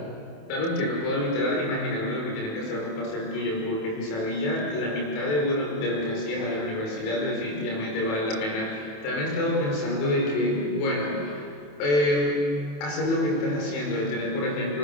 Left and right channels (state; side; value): late; right; 27 ms